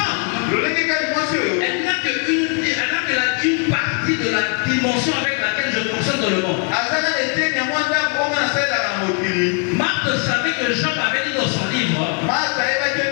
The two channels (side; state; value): right; quieter; 38.8 dB